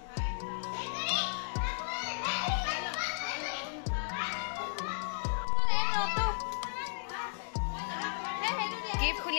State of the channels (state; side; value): silent; right; digital silence